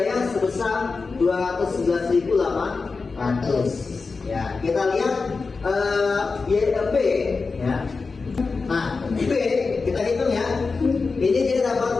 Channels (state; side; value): quieter; right; 4.4 dB